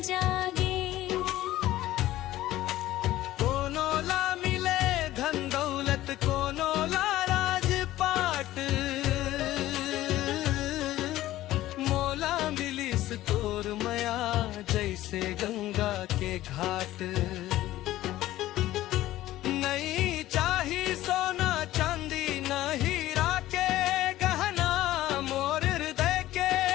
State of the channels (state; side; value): quieter; right; 15.2 dB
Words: तोर मया जैसे गंगा के घाट नहीं चाही सोना चांदी न हीरा के गहना मोर हृदय के